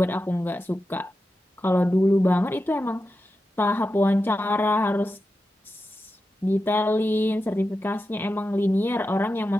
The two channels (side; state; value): both; normal; correlation 0.91